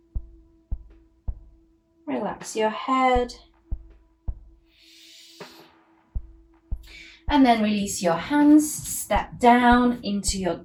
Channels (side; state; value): both; identical; correlation 1.00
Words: Relax your head. And then release your hands, step down into your